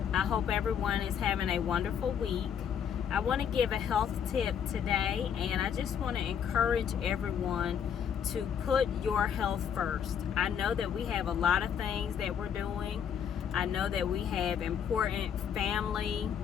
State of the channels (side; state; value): right; quieter; 8.2 dB